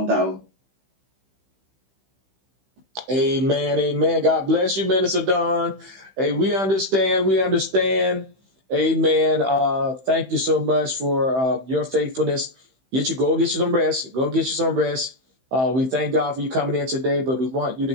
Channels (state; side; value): late; left; 15 ms